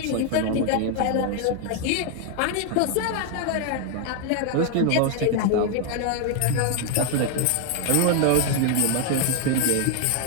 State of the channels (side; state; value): both; different; correlation 0.01